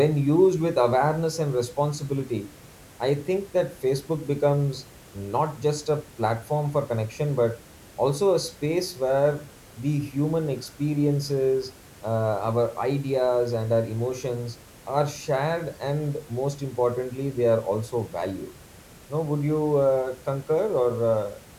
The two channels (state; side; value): identical; both; correlation 1.00